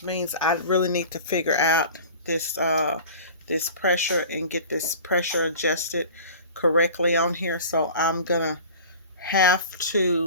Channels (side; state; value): both; inverted; correlation -0.40